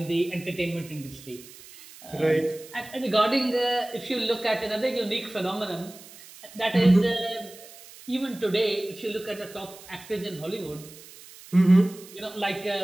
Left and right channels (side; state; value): right; noise; hiss, 19 dB below the sound